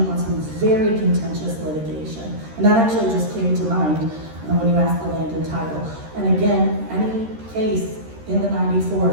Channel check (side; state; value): left; late; 13 ms